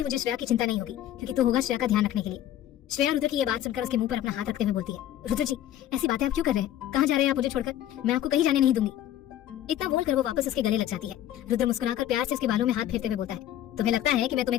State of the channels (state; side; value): quieter; right; 12.1 dB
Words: मुझे श्रेया की चिंता नहीं होगी, क्योंकि तू होगा श्रेया का ध्यान रखने के लिए। श्रेया रुद्र की ये बात सुनकर उसके मुंह पर अपना हाथ रखते हुए बोलती है, रुद्र जी ऐसी बातें आप क्यों कर रहे हैं? कहाँ जा रहे हैं आप मुझे छोड़कर? मैं आपको कहीं जाने नहीं दूंगी। इतना बोलकर वो वापस उसके गले लग जाती है। रुद्र मुस्कुराकर प्यार से उसके बालों में हाथ फेरते हुए बोलता है, तुम्हें लगता है कि मैं तुम्हें